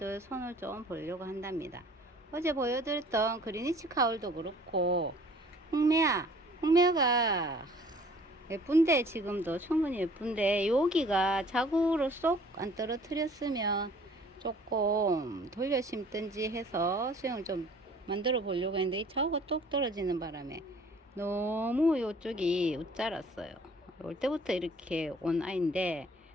손을 좀 보려고 한답니다. 어제 보여드렸던 그리니치 카울도 그렇고, 홍매화가 예쁜데, 지금도 충분히 예쁜데 여기가 자구로 쏙 안 떨어뜨렸으면 조금 돌려 심든지 해서 수영을 좀 만들어 보려고 했는데, 이 자구가 똑 떨어지는 바람에 너무 이쪽이 웃자랐어요. 올 때부터 이렇게 온 아이인데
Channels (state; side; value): normal; both; correlation 0.53